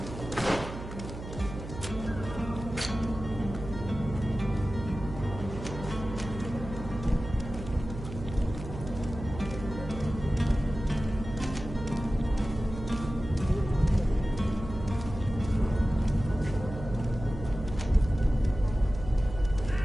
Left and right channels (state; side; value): noise; right; hum, 10 dB below the sound